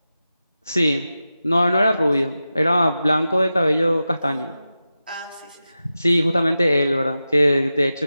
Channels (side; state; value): both; inverted; correlation -0.93